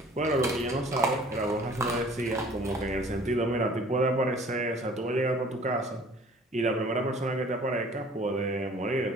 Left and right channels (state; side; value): normal; both; correlation 0.51